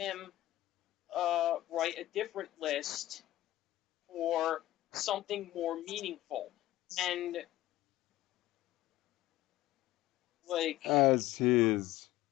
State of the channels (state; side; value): quieter; right; 15.6 dB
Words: write a different list for something more meaningful. And